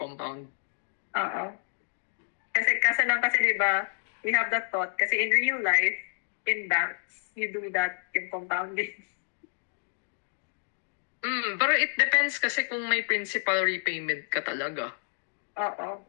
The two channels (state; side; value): silent; right; digital silence